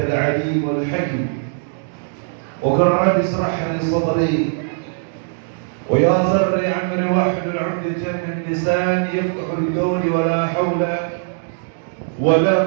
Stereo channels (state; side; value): silent; left; digital silence